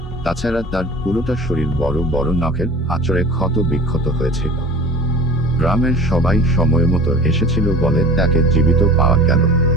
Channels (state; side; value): normal; both; correlation 0.41